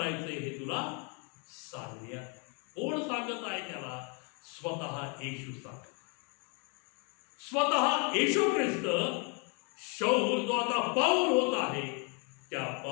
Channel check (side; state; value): right; quieter; 35.4 dB